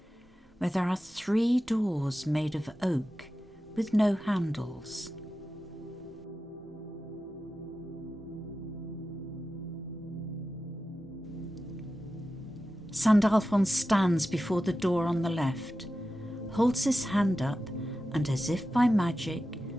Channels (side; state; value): both; normal; correlation 0.93